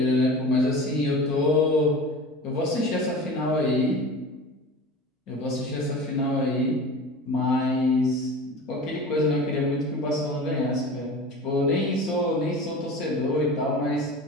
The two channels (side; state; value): both; normal; correlation 0.35